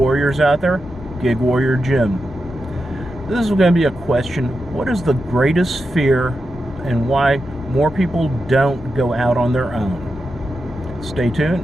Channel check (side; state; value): both; normal; correlation 0.88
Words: out there. Gig Warrior Jim. This is going to be a question. What is the greatest fear and why more people don't go out on their own? Stay